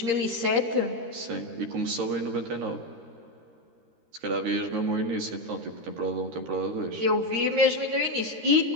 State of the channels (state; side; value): late; left; 13 ms